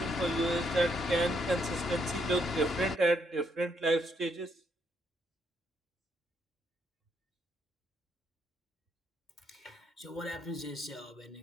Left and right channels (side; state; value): both; normal; correlation 0.74